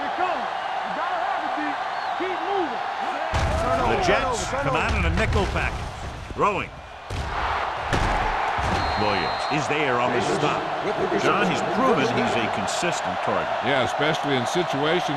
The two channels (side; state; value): both; identical; correlation 1.00